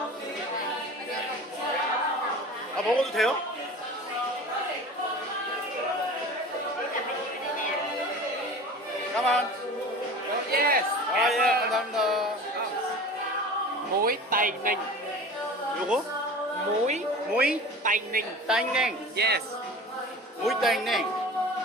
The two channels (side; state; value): both; normal; correlation 0.38